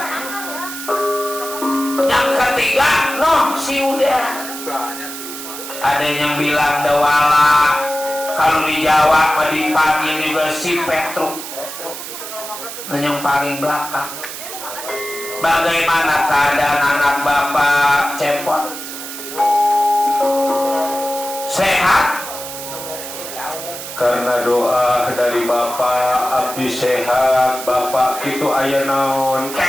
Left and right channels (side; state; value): right; noise; hiss, 9 dB below the sound